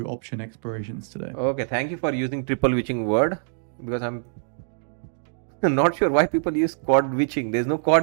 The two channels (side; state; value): left; silent; digital silence